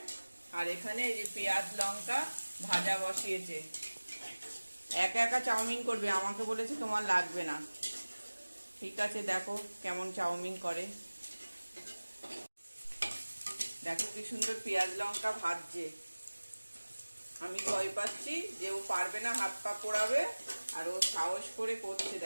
আর এখানে এই যে পেঁয়াজ লঙ্কা ভাজা বসিয়েছে। একা একা চাউমিন করবে, আমাকে বলেছে তোমার লাগবে না। ঠিক আছে, দেখো কেমন চাউমিন করে। দেখো কি সুন্দর পেঁয়াজ লঙ্কা ভাজছে। আমি ভয় পাচ্ছি যে ও পারবে না, হাত পা পোড়াবে। আর ও সাহস করে করছে,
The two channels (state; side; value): inverted; both; correlation -1.00